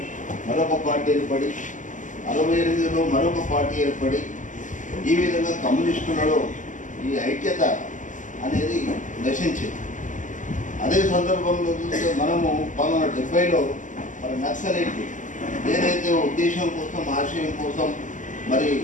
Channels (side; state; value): right; late; 0.37 ms